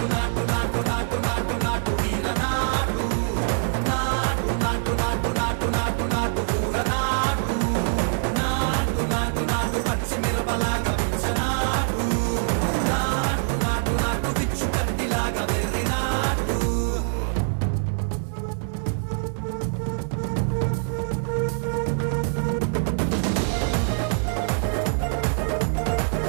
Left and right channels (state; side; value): silent; left; 62 dB below the other